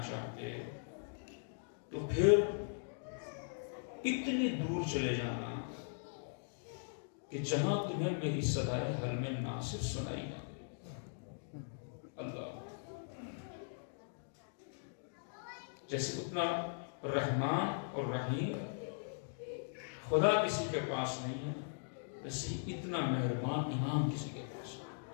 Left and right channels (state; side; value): silent; right; digital silence